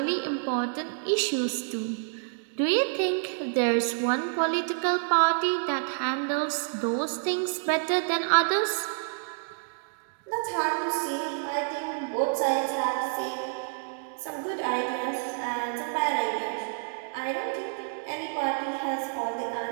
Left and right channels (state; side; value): silent; left; digital silence